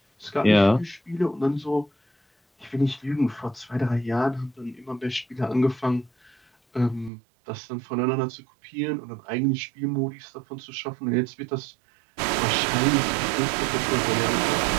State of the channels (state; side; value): drops out; left; at 7.1 s